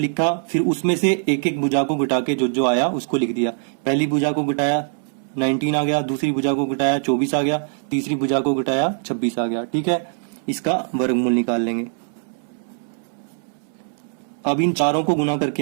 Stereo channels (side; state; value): left; silent; 64 dB below the other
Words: फिर उसमें से एक एक भुजा को घटा के जो जो आया उसको लिख दिया। पहली भुजा को घटाया 19 आ गया, दूसरी भुजा को घटाया 24 आ गया, तीसरी भुजा को घटाया 26 आ गया। ठीक है, इसका वर्गमूल निकाल लेंगे। अब इन चारों को गुना